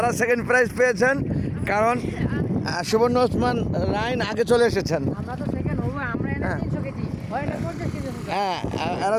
সেকেন্ড প্রাইজ পেয়েছেন, কারণ সুবর্ণ ওসমান রাইন আগে চলে এসেছেন। হ্যাঁ, এরা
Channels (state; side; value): identical; both; correlation 1.00